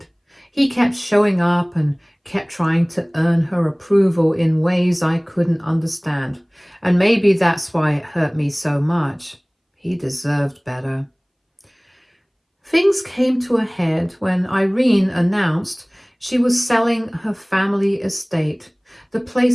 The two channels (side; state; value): both; identical; correlation 1.00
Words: He kept showing up and kept trying to earn her approval in ways I couldn't understand. And maybe that's why it hurt me so much. He deserved better. Things came to a head when Irene announced she was selling her family estate. The